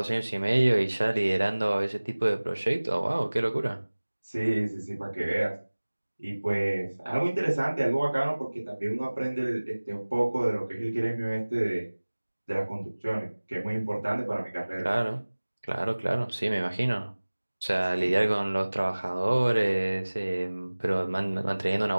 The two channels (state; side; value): inverted; both; correlation -1.00